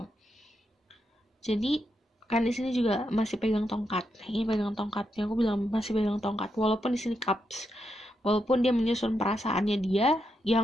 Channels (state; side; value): normal; both; correlation 0.83